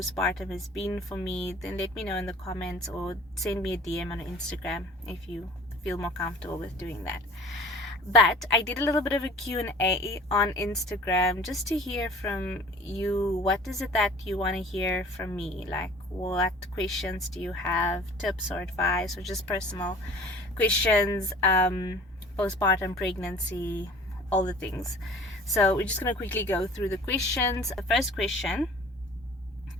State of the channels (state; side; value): normal; both; correlation 0.47